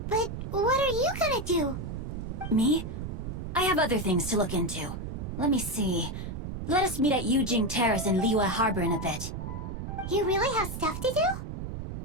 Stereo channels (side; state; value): right; noise; rumble, 6 dB below the sound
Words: but what are you gonna do? Me? I have other things to look into. Let me see. Let us meet at Yujing Terrace in Liyue Harbor in a bit. You really have stuff to do?